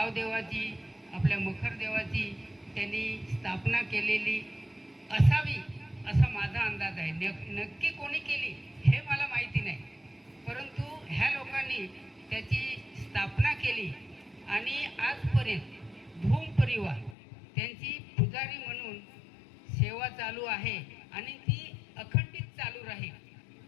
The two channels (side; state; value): right; drops out; at 17.2 s